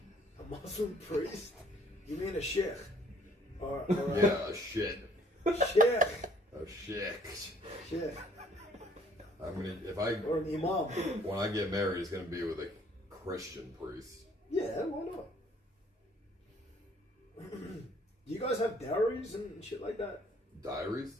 A Muslim priest? You mean a sheikh? Or Yeah, a shit. sheikh. A sheikh. Sheikh. Or an imam. When I get married, it's gonna be with a Christian priest. Yeah, why not? Do you guys have dowries and shit like that? Diaries?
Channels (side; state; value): both; normal; correlation 0.59